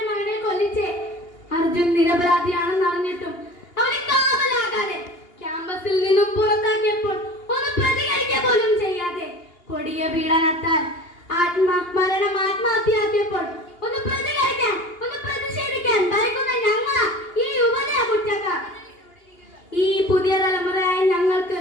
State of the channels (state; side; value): late; right; 2.8 ms